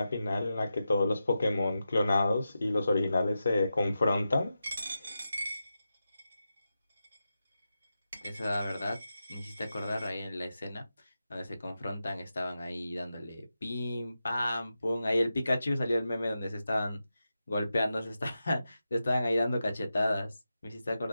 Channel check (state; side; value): inverted; both; correlation -0.90